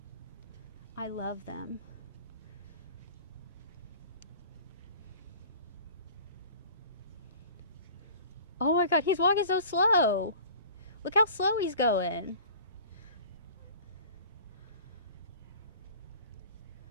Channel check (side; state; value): both; inverted; correlation -0.43